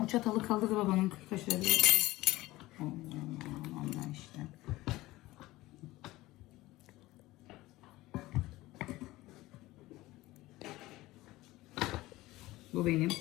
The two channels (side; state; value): right; quieter; 18.3 dB